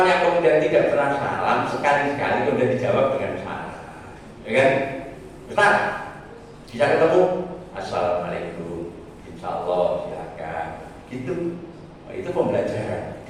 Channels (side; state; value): both; identical; correlation 1.00